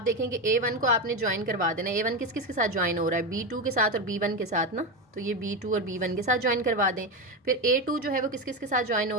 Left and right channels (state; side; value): normal; both; correlation 0.15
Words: देखेंगे A1 को आपने ज्वाइन करवा देना। A1 किस किस के साथ ज्वाइन हो रहा है? B2 के साथ और B1 के साथ ना, तो ये B2 और B1 के साथ ज्वाइन करवा दें। फिर A2 जो है वो किस किस के साथ ज्वाइन